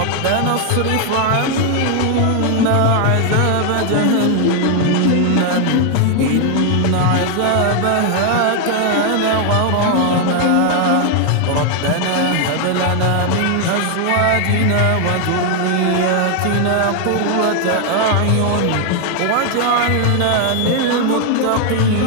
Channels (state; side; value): different; both; correlation 0.00